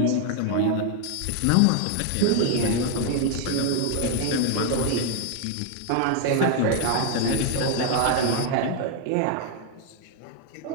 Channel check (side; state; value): both; different; correlation 0.00